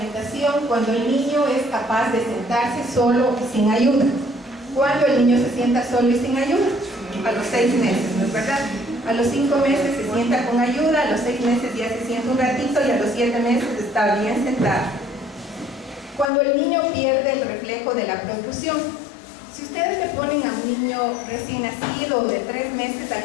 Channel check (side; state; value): right; drops out; at 16.3 s